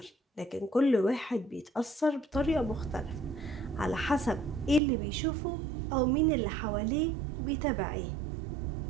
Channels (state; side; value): drops out; left; at 4.8 s